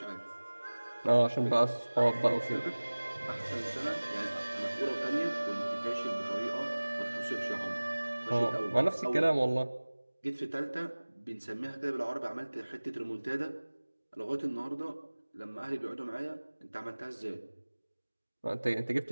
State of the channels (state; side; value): inverted; both; correlation -1.00